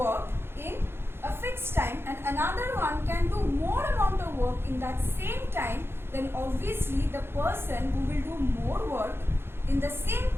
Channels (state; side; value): late; left; 0.11 ms